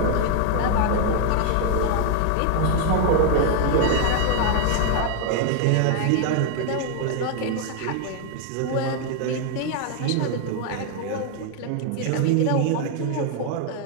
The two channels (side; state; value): both; different; correlation 0.00